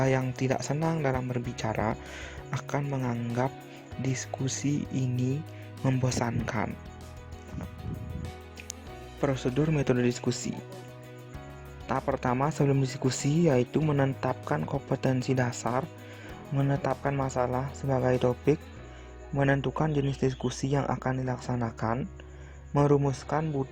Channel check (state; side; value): identical; both; correlation 1.00